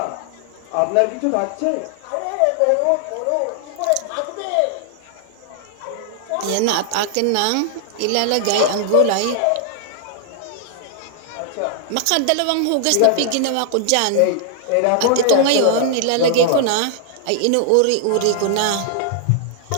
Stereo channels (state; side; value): different; both; correlation 0.00